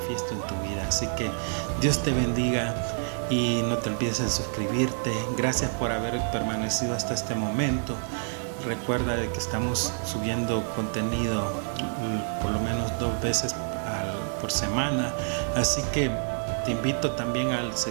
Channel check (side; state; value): left; silent; digital silence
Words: en tu vida. Así que Dios te bendiga y no te olvides de suscribirte. Gracias por haber permanecido hasta este momento. Recuerda de que estamos subiendo contenido por lo menos 2 veces por semana, así que te invito también al